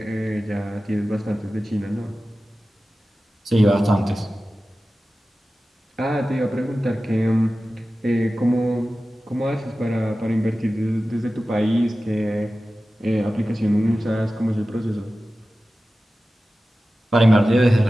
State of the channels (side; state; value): both; normal; correlation 0.95